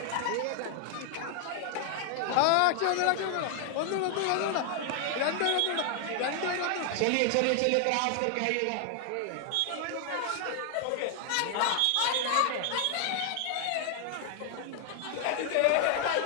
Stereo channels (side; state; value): both; different; correlation 0.00